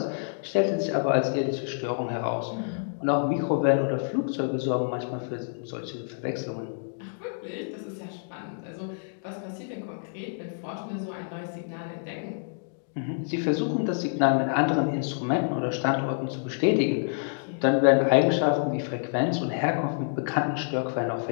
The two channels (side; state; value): right; silent; digital silence